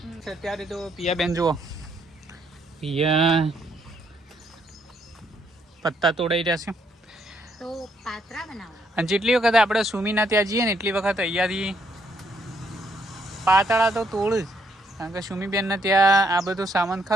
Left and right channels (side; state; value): both; normal; correlation 0.72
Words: અત્યારે તો પિયા બેન જુઓ, પિયા પત્તા તોડાઈ રહ્યા છે તો પાત્રા બનાવો. અને જેટલી વખત આપણે સુમીના ત્યાં જઈએ ને એટલી વખત અહીંયાથી પાતળા તો તોડ જ, કારણ કે સુમીબેનને ત્યાં આ બધો સામાન